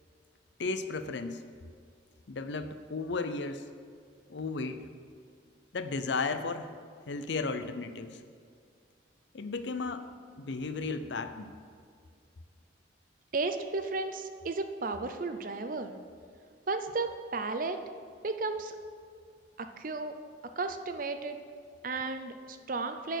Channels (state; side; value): normal; both; correlation 0.03